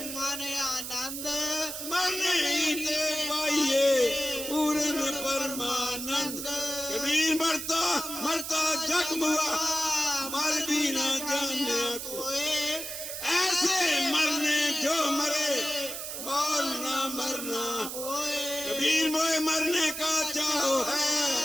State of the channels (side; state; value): right; noise; hiss, 6 dB below the sound